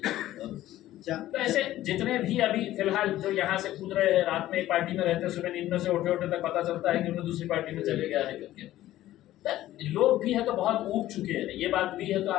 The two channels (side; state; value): right; quieter; 14.4 dB